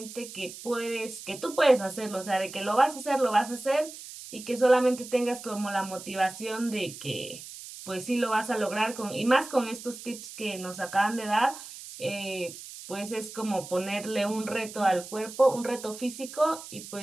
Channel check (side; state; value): right; noise; hiss, 13 dB below the sound